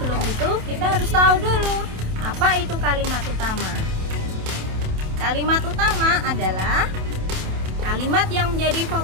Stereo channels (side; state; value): left; late; 27 ms